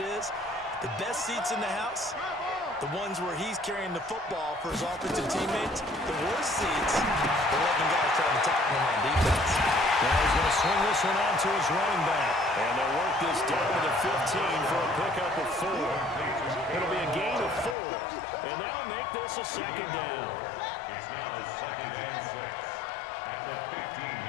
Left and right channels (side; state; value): right; drops out; at 17.8 s